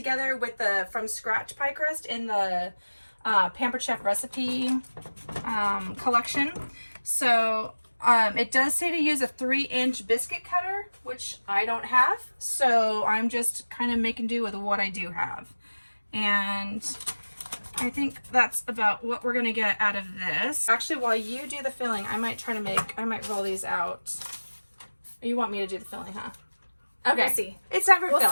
with the from scratch pie crust in the Pampered Chef recipe collection. So it does say to use a 3-inch biscuit cutter, which I don't have. So I'm just kind of making do with what I do have. And I think that's about what we're gonna get out of this. Actually, while you do the filling, I might roll these out. You want me to do the filling, huh? Okay. We'll see. It's time for We'll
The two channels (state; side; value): inverted; both; correlation -1.00